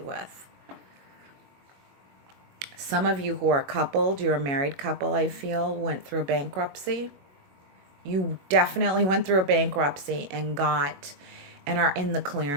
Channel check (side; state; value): left; late; 22 ms